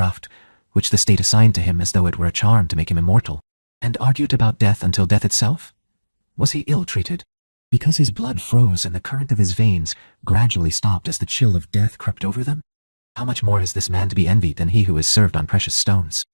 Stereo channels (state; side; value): inverted; both; correlation -1.00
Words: which the state assigned to him as though it were a charm to make him immortal, and argued about death until death itself? Was he ill-treated? Because his blood froze and the current of his veins gradually stopped as the chill of death crept over them? How much more is this man to be envied than he who is served on precious stones,